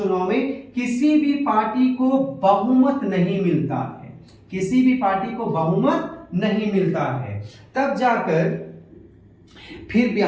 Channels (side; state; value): both; identical; correlation 1.00